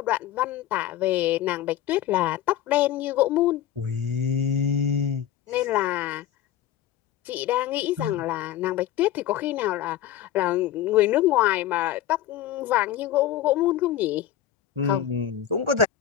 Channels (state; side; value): quieter; right; 10.9 dB